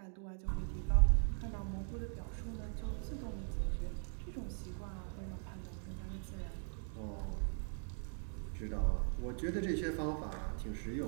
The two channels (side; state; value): left; silent; 51 dB below the other